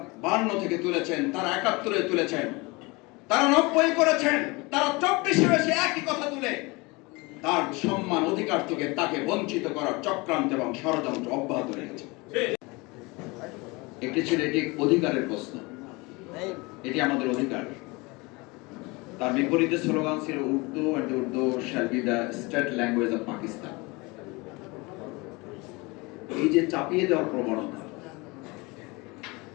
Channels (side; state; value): right; quieter; 25.4 dB